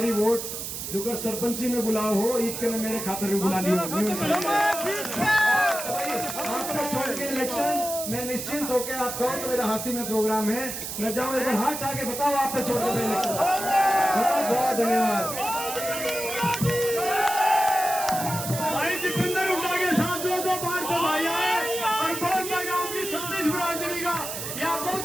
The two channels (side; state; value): right; noise; hiss, 6 dB below the sound